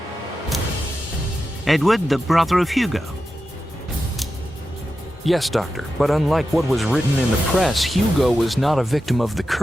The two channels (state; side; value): normal; both; correlation 0.91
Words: Edward, the brother of Hugo. Yes, Doctor, but unlike what was written in the press, Hugo was not a victim of the